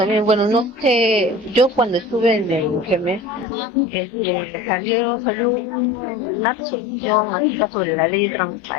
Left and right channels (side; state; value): right; drops out; at 3.5 s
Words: bueno, no sé, yo cuando estuve en el GEMES, salió una resolución acerca sobre la ley de